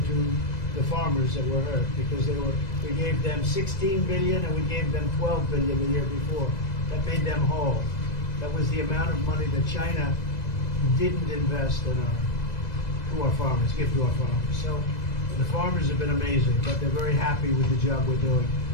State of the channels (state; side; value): late; right; 2.0 ms